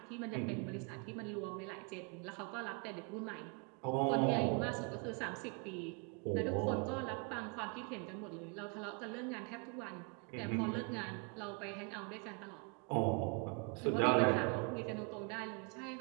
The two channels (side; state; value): left; quieter; 35.3 dB